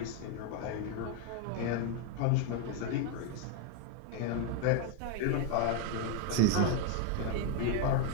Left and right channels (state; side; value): different; both; correlation 0.01